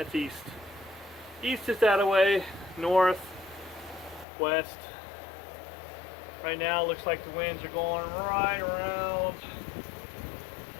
east. East is that way, north, west. Right now it looks like the winds are going right around,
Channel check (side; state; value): right; drops out; at 4.2 s